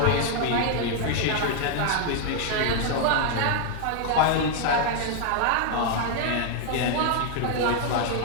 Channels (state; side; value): different; both; correlation 0.00